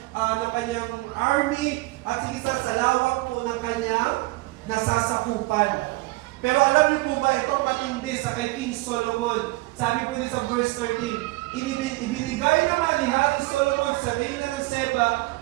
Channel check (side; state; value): left; quieter; 21.9 dB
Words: army, at sigisa sa lawak po ng kanyang nasasakupan. Pero alam niyo po ba, itong matindi sa kay King Solomon, sabi po din sa verse 13, ibinigay naman ni Haring Solomon sa reyna ng Sheba